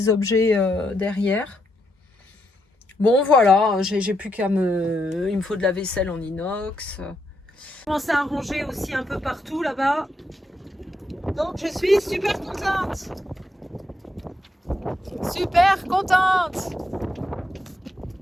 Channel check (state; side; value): normal; both; correlation 0.80